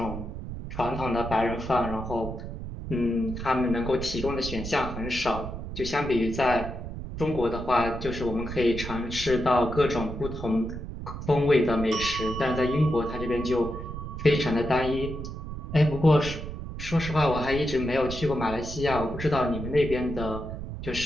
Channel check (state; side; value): noise; right; rumble, 8 dB below the sound